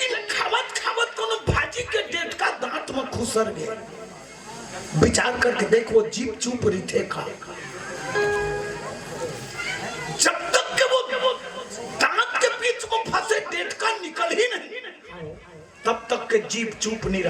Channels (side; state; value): both; identical; correlation 1.00